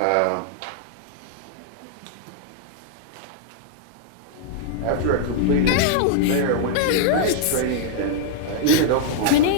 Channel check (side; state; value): both; different; correlation -0.01